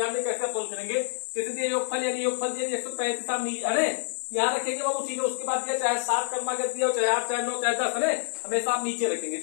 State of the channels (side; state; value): right; silent; digital silence